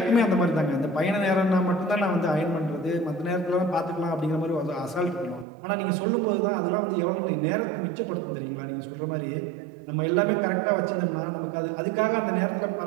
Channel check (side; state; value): left; drops out; at 5.5 s